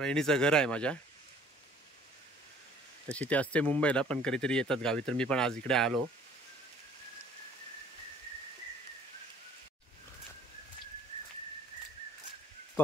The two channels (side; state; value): both; normal; correlation 0.55